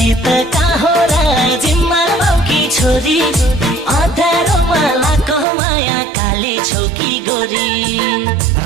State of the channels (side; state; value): left; drops out; at 5.5 s